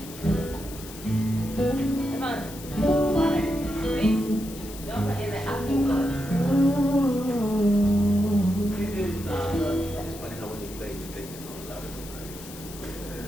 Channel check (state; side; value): noise; left; hiss, 15 dB below the sound